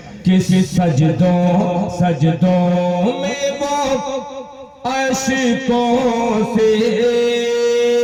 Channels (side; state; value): both; identical; correlation 1.00